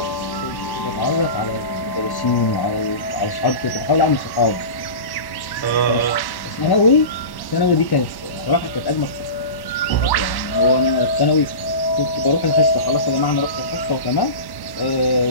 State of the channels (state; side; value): late; right; 1.1 ms